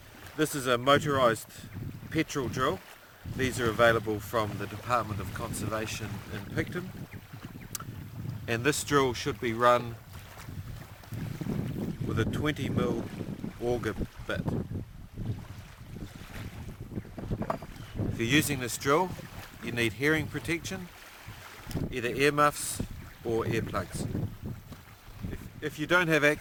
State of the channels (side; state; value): both; identical; correlation 1.00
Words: This is a motorised petrol drill. These are available from the Dept of Conservation in Picton. And this drill should be run with a 20mm auger bit. If you're using this drill, you need hearing protection, either earmuffs or earplugs. If you don't have